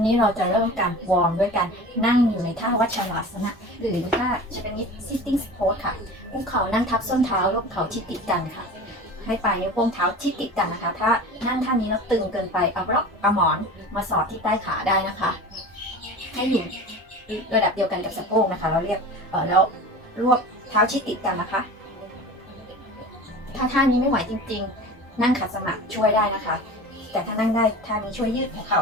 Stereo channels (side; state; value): both; normal; correlation 0.36